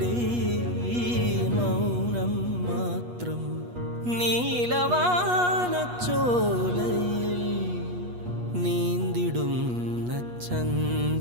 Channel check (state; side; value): late; left; 8.3 ms